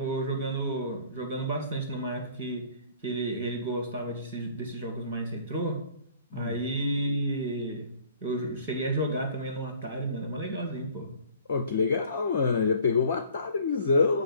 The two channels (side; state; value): both; inverted; correlation -0.53